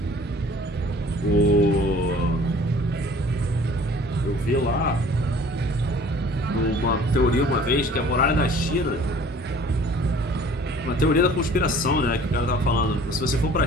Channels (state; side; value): normal; both; correlation 0.50